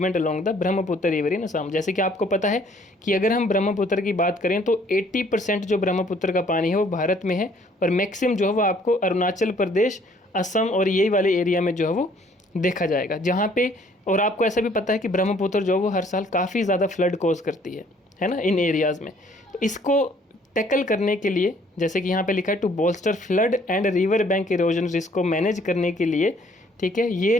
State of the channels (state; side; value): normal; both; correlation 0.61